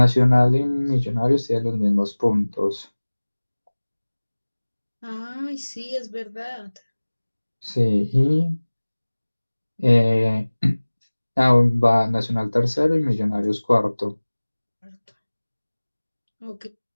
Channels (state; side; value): inverted; both; correlation -1.00